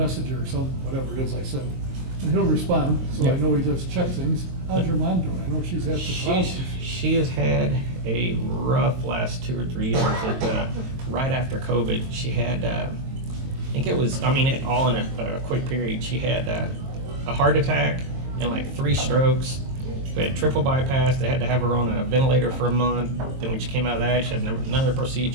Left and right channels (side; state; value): left; late; 22 ms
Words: or whatever it is I send, and he'll respond, so yeah. I know he does check things. How's your mom doing? I know she's had some problems. She has had a rough last 2 or 3 years. Right after COVID, she had, I think it was, all in a quick period. She had a heart attack and like 3 strokes. We had triple bypass. They had to have her on a ventilator for a month. Then when she came out of that, she had another